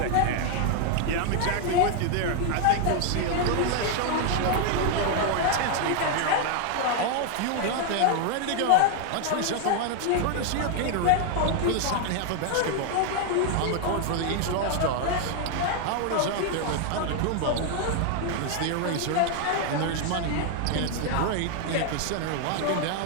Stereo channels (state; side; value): different; both; correlation 0.00